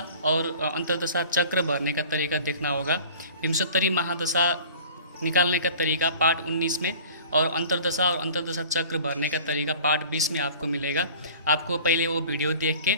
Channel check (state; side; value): inverted; both; correlation -0.44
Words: और अंतर्दशा चक्र भरने का तरीका देखना होगा। विंशोत्तरी महादशा निकालने का तरीका पार्ट 19 में और अंतर्दशा और अंतर्दशा चक्र भरने का तरीका पार्ट 20 में आपको मिलेगा। आपको पहले वो वीडियो देख के